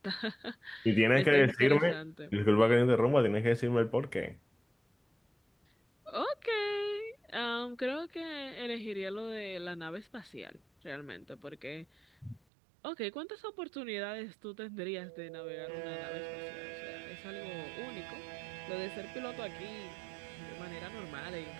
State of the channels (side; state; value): left; drops out; at 12.4 s